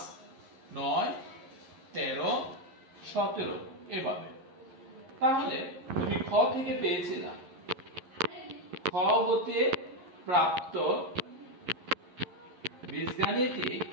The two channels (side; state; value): left; late; 11 ms